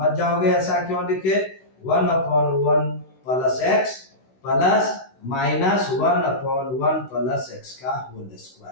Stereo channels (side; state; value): right; late; 16 ms